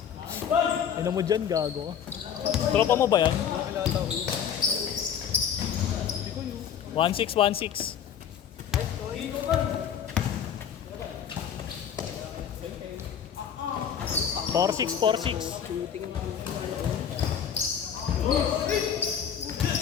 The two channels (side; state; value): right; quieter; 8.4 dB